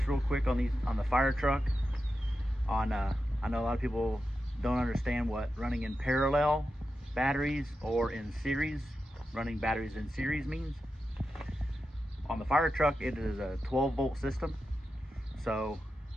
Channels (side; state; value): both; normal; correlation 0.90